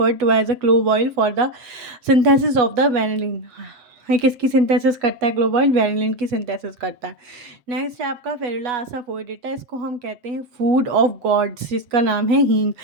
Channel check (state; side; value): late; left; 7.8 ms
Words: to as a clove oil for the synthesis of the vanillin. ये किसकी सिंथेसिस करता है? क्लोव ऑयल वेनिलिन की सिंथेसिस करता है। नेक्स्ट है आपका फेरुला असाफोइडेटा। इसको हम कहते हैं फूड ऑफ गॉड्स, जिसका नाम है हींग।